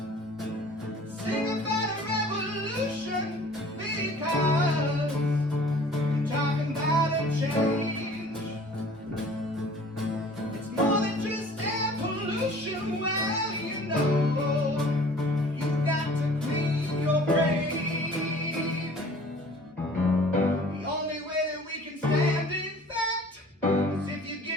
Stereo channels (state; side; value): normal; both; correlation 0.49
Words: Sing about a revolution because I'm talking about a change. It's more than just air pollution. Well, you know, you've got to clean your brain. The only way that we can stand, in fact, is if you